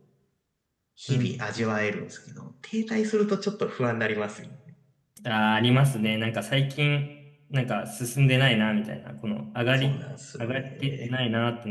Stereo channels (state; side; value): identical; both; correlation 1.00